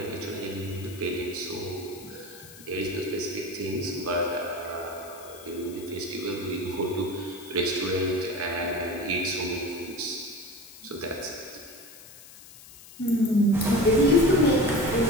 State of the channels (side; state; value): left; noise; hiss, 19 dB below the sound